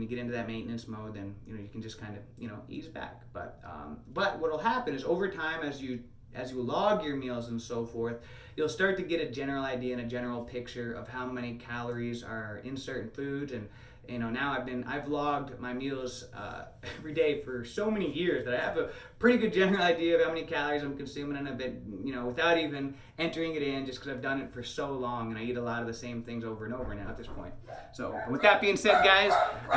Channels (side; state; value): both; identical; correlation 1.00